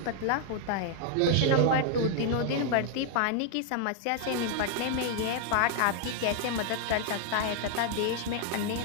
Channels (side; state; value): both; different; correlation 0.00